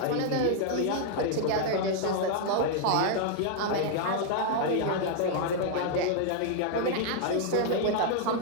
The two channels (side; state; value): both; different; correlation 0.00